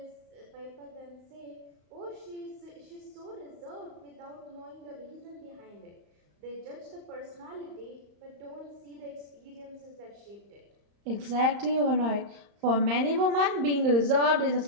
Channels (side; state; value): left; late; 35 ms